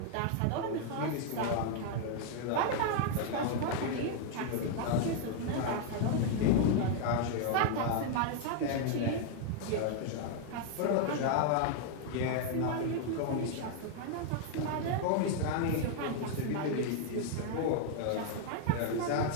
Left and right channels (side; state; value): both; different; correlation 0.00